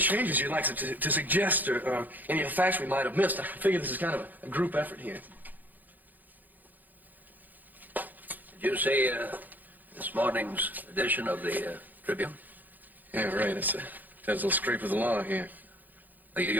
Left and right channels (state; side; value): late; left; 0.087 ms